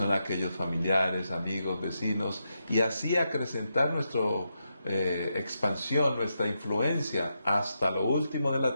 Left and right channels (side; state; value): both; inverted; correlation -0.84